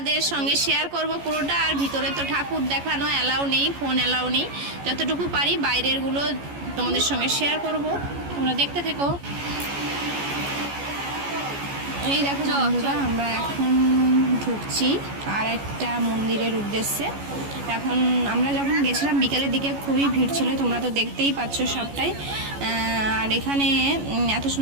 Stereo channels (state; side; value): late; left; 14 ms